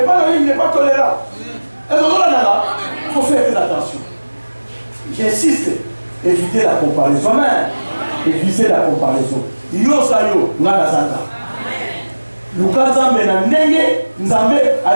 pas il n'est pas tolérant. Il faut faire très attention. J'insiste, éviter la comparaison. Amen. Éviter la comparaison. Yo sayo, ngana santa. Luka Nzambe na ndenge, Nzambe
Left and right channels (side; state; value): both; inverted; correlation -1.00